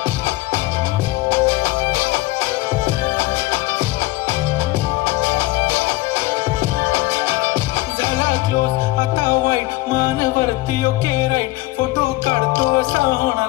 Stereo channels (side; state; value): right; quieter; 19.1 dB